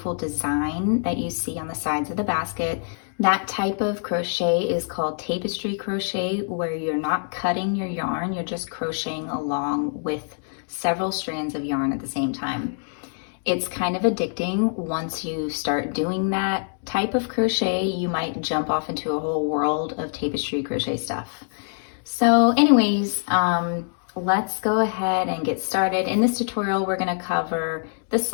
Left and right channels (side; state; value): right; silent; 59 dB below the other